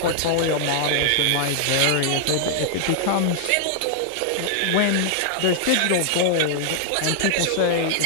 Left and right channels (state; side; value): different; both; correlation -0.01